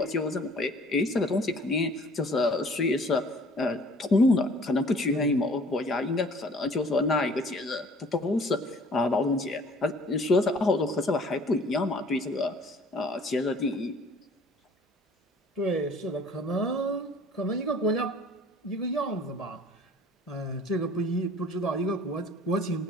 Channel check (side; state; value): both; normal; correlation 0.52